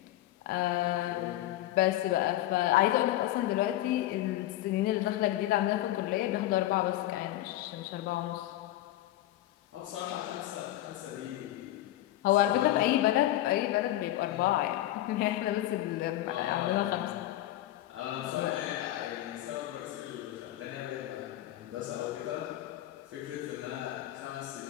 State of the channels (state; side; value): quieter; right; 14.7 dB